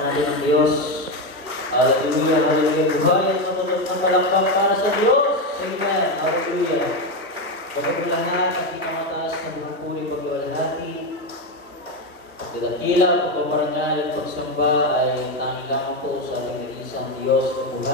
ang Diyos. Hallelujah, hallelujah. Buhay at matutog ng palakpak para sa Diyos. Amen, hallelujah. Bago lahat, ang pinakamataas na bumupuli pag-iwalhati. Pagdadakila, pagpaparangal at pagsamba ay tanging lamang po sa ating isang Diyos na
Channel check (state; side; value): normal; both; correlation 0.10